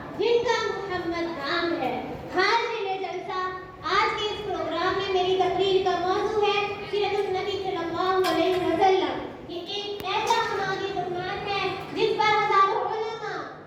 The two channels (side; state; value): both; identical; correlation 1.00